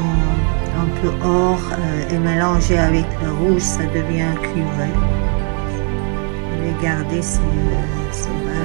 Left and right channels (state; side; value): quieter; left; 37.3 dB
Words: un peu or et mélangés avec le rouge, ça devient cuivré. Regardez ces